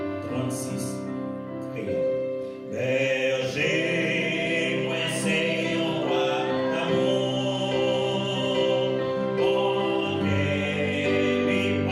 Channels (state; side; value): identical; both; correlation 1.00